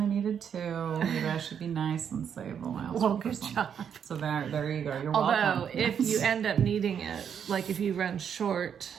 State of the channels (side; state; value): left; quieter; 8.0 dB